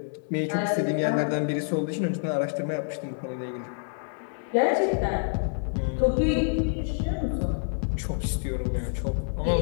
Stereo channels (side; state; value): right; silent; 60 dB below the other